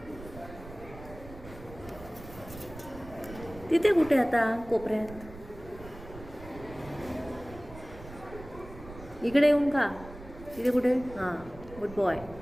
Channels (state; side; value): noise; right; rumble, 16 dB below the sound